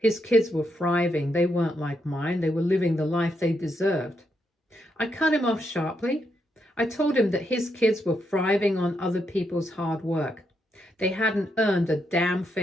kids were thriving. They weren't like mine. They were living the life they deserved. I cut him off sharply. I told him that his kids were thriving on other people's hard work. They hadn't earned a damn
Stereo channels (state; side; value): normal; both; correlation 0.80